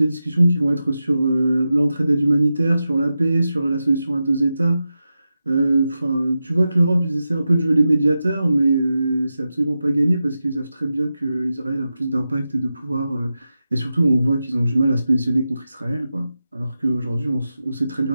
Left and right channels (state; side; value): inverted; both; correlation -0.91